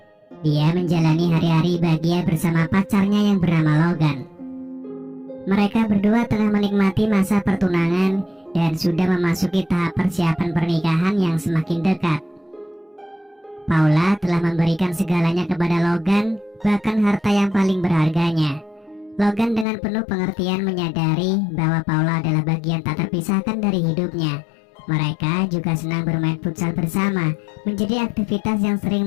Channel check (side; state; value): right; drops out; at 19.7 s